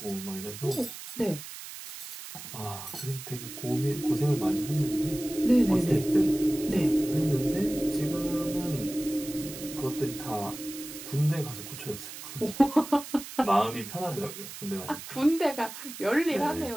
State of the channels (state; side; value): noise; right; hiss, 12 dB below the sound